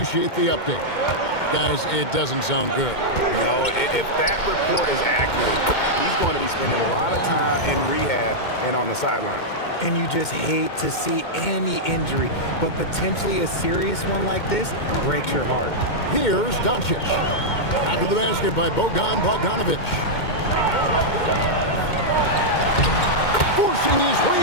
the update. Guys, it doesn't sound good. No, if that report is accurate, he's going to be spending a lot of time in rehab and on the sidelines. And you just hate to see any injury, but potentially a serious one like this breaks your heart. Here's Doncic. After the basket by Bojan Bogdanovic. Forcing his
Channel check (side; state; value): right; late; 2.2 ms